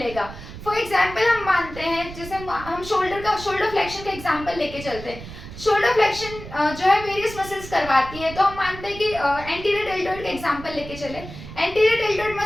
फॉर एग्जाम्पल हम मानते हैं, जैसे हम शोल्डर फ्लेक्शन का एग्जाम्पल लेके चलते हैं. शोल्डर फ्लेक्शन जो है वेरियस मसल्स करवाती है, तो हम मानते हैं कि एंटीरियर डेल्टोइड का एग्जाम्पल लेके चले. एंटीरियर डेल्टोइड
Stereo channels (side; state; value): right; noise; rumble, 13 dB below the sound